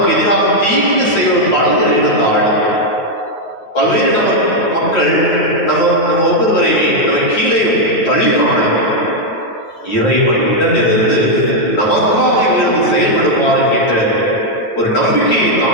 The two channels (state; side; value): late; right; 9.3 ms